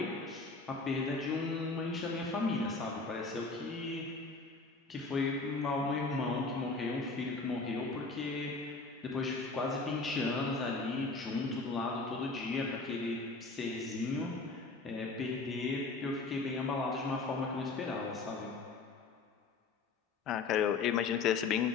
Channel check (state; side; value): quieter; right; 3.9 dB